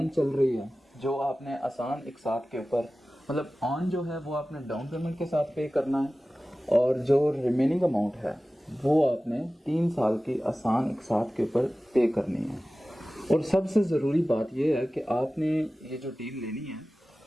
چل رہی ہے، جو آپ نے آسان اقساط کے اوپر، مطلب آن جو ہے وہ آپ نے ڈاؤن پیمنٹ کے ساتھ پے کرنا ہے، اور جو ریمیننگ اماؤنٹ ہے وہ آپ نے 3 سال کی آسان اقساط کے اوپر پے کرنی ہے. اور سب سے ضروری بات یہ ہے کہ آپ نے یہ جو ڈیل لینی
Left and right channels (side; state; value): both; normal; correlation 0.96